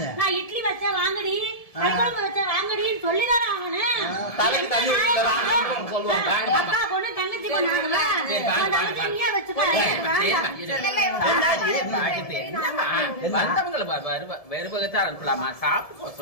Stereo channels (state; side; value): late; right; 1.7 ms